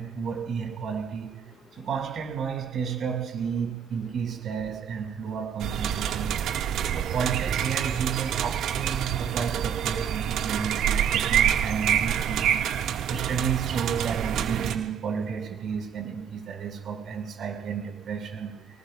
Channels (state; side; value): quieter; left; 8.1 dB